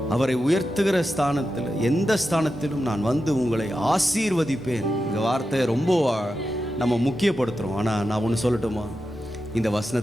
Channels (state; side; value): normal; both; correlation 0.90